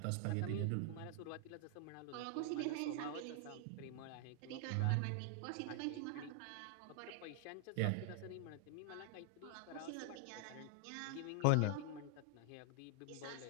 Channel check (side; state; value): both; different; correlation 0.00